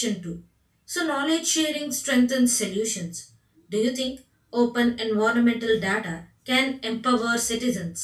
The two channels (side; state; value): both; identical; correlation 1.00